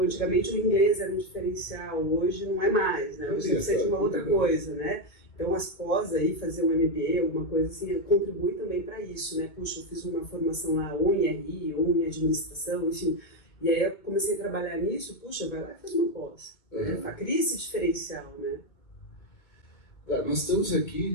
antigamente o inglês era um diferencial, hoje não é mais, né? Hoje precisa de uma outra coisa, né? Então as pós aí, fazer um MBA, alguma coisa assim, contribui também para isso, né? Puxa, eu fiz uma formação lá ou em RI, ou em administração, enfim. E aí eu comecei a trabalhar nisso, puxa, vai lá e faz uma pós, né? Cria esse diferencial, né? Tá, nós estamos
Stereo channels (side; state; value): right; late; 2.2 ms